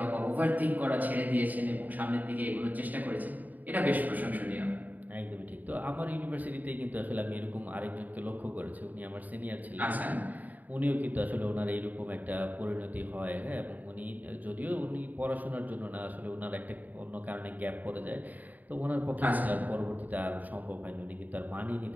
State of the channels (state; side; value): late; left; 0.081 ms